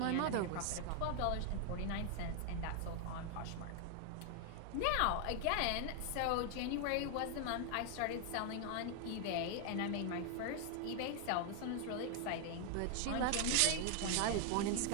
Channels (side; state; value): both; different; correlation 0.00